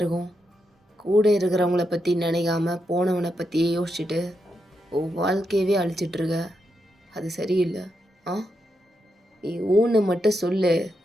கூட இருக்கிறவங்கள பற்றி நினைக்காம போனவனை பற்றியே யோசிச்சுட்டு உன் வாழ்க்கையவே அழிச்சிட்ருக்க. அது சரியில்லை. ஆ, நீ ஊன்னு மட்டும் சொல்லு.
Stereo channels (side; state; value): both; normal; correlation 0.84